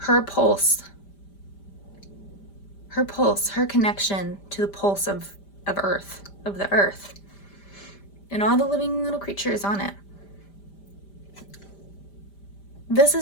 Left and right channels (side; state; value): right; late; 5.0 ms